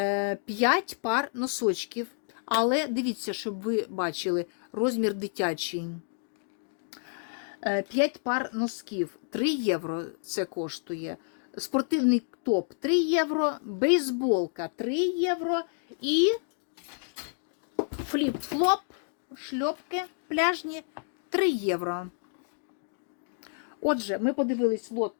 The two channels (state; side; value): silent; right; digital silence